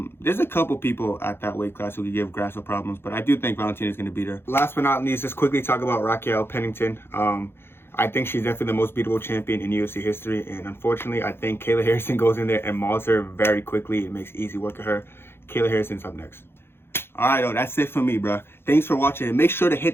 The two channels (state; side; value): late; right; 0.11 ms